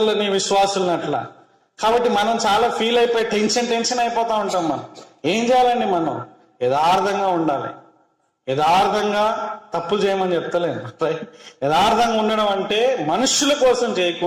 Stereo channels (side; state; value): both; identical; correlation 1.00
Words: విశ్వాసులని అట్లా. కాబట్టి మనం చాలా ఫీల్ అయిపోయి టెన్షన్ అయిపోతా ఉంటాం. మనం ఏం చేయాలండి? మనం యథార్థంగా ఉండాలి. యథార్థంగా తప్పులు చేయమని చెప్తలేను. యథార్థంగా ఉండడం అంటే మనుషుల కోసం